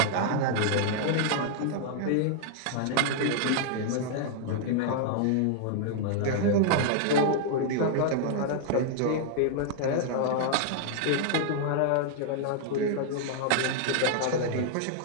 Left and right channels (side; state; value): both; different; correlation 0.00